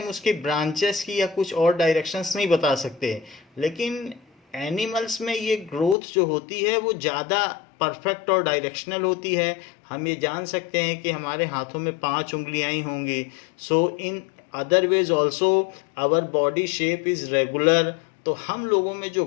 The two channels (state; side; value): drops out; right; at 6.0 s